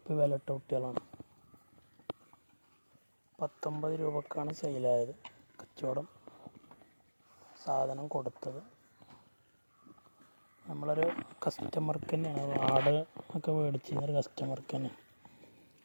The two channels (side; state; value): both; inverted; correlation -1.00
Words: വിലയിട്ട കുട്ടികളാണ്. 19 രൂപക്കാണ് സെയിലായത്. കച്ചവടം സാധനം കൊടുത്തത് നമ്മളൊരു കസ്റ്റമർക്ക് തന്നെയാണ്. ആട് ഒക്കെ മേടിച്ചിരുന്നൊരു കസ്റ്റമർക്ക് തന്നെ.